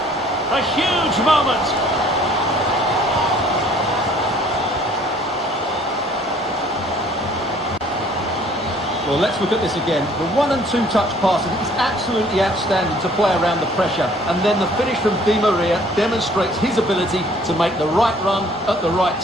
A huge moment. Well, let's look at this again. The 1- and 2-touch passing is absolutely outstanding to play around the pressure. And then the finish from Di Maria demonstrates his ability to make the right run at the right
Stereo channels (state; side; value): normal; both; correlation 0.57